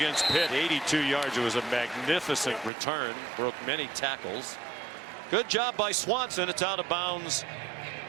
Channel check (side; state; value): left; drops out; at 2.7 s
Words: Pitt. 82 yards. It was a magnificent return. Broke many tackles. Good job by Swanson. It's out of bounds